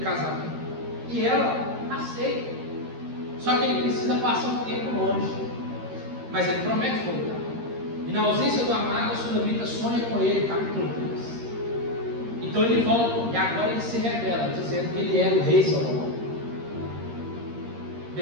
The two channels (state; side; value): late; left; 13 ms